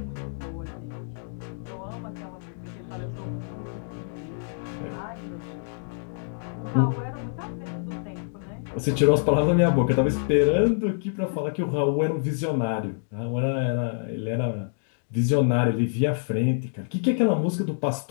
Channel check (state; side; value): silent; right; digital silence